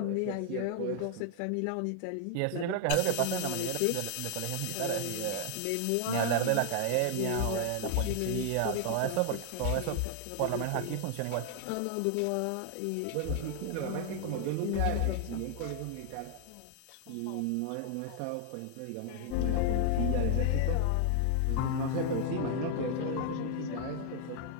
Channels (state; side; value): different; both; correlation 0.00